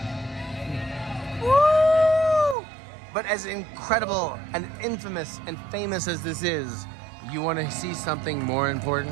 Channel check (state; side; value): drops out; left; at 2.6 s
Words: But as incredible and infamous and famous as this is, you want to see something more